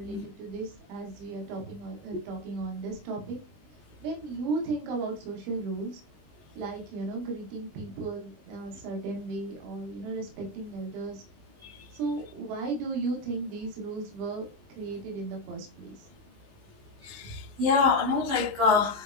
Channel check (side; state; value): left; late; 20 ms